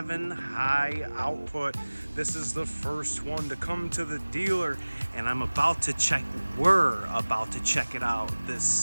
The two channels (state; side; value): inverted; both; correlation -1.00